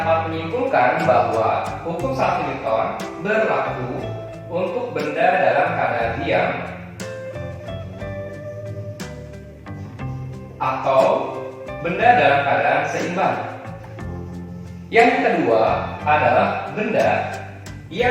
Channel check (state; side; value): identical; both; correlation 1.00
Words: menyimpulkan bahwa hukum 1 Newton berlaku untuk benda dalam keadaan diam atau benda dalam keadaan seimbang. Yang kedua adalah benda